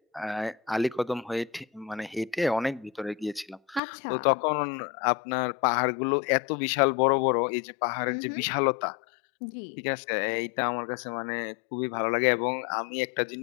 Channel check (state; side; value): drops out; right; at 3.8 s